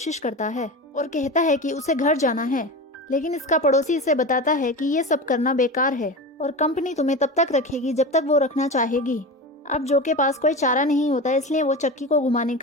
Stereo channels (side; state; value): both; normal; correlation 0.26